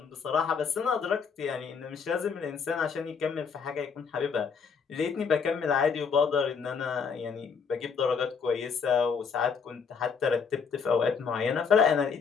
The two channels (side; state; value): right; quieter; 6.0 dB